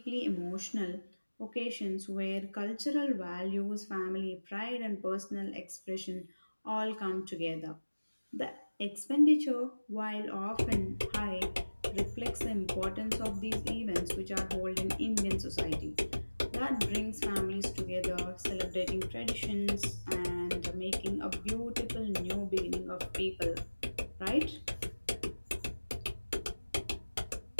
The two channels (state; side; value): inverted; both; correlation -1.00